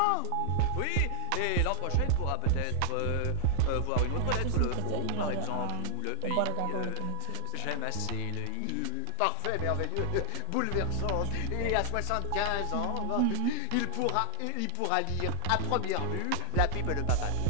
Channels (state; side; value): different; both; correlation 0.00